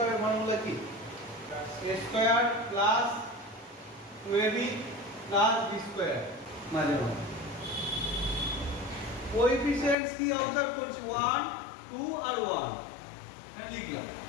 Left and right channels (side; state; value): right; drops out; at 10.0 s